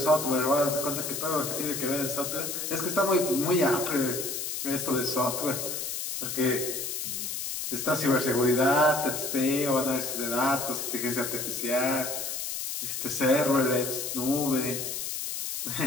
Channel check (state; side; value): noise; left; hiss, 4 dB below the sound